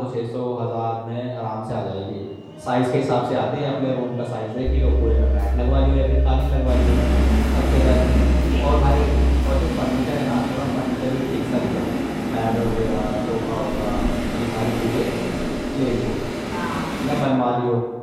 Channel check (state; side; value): identical; both; correlation 1.00